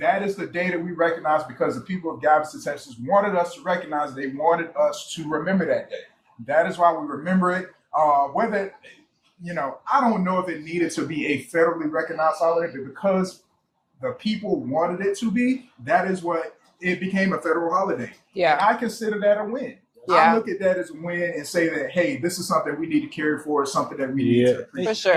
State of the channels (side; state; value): both; identical; correlation 1.00